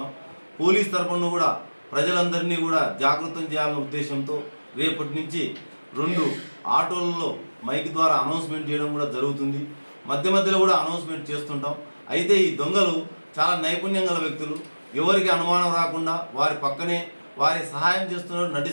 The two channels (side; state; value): both; inverted; correlation -1.00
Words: పోలీస్ తరపున కూడా ప్రజలందరినీ కూడా జాగృతం చేయాలనే ఉద్దేశంతో రేపటి నుంచి 2 ఆటోలలో మైక్ ద్వారా అనౌన్స్మెంట్ చేయడం కూడా జరుగుతుంది. మధ్య మధ్యలో కూడా అనౌన్స్మెంట్ చేస్తుంటాం. అయితే ఈ దొంగలు చాలా నైపుణ్యం గల వ్యక్తులు, ఎవరికి అనుమానం రాకుండా వారి పక్కనే వారి సహాయం చేస్తున్నట్టు